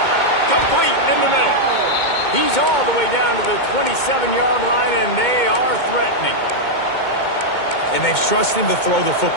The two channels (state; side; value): late; right; 2.2 ms